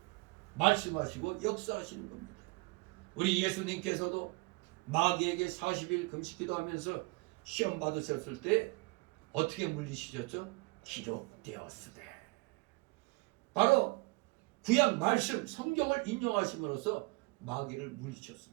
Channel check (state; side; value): quieter; left; 26.5 dB